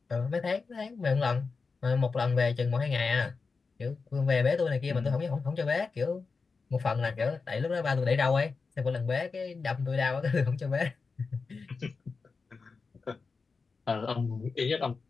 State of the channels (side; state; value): right; quieter; 4.6 dB